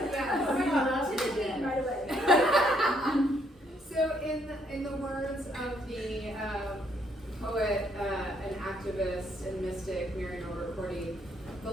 Yeah. We love the dead. Right away. So in the words of the poet and activist and mystic Mary Cordy, the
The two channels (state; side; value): normal; both; correlation 0.70